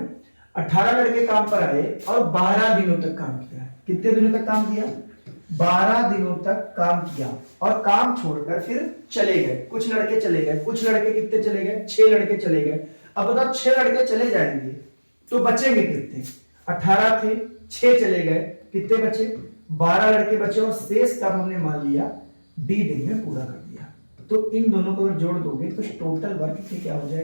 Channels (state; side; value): inverted; both; correlation -1.00